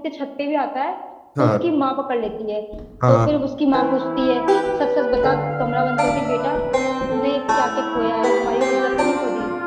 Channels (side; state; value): both; identical; correlation 1.00